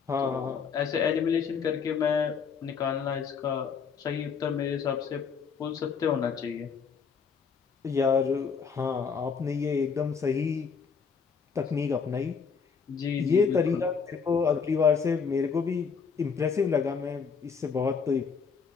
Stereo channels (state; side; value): quieter; right; 5.9 dB